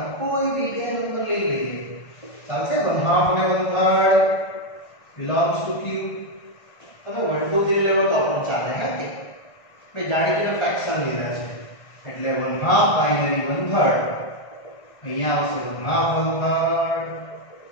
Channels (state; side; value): late; right; 1.6 ms